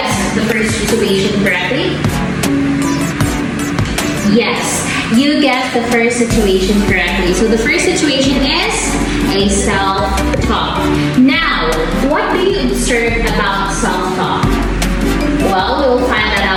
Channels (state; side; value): identical; both; correlation 1.00